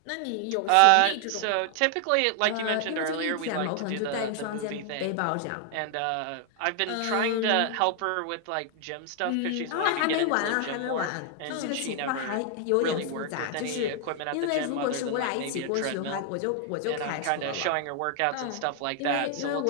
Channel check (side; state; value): both; different; correlation 0.00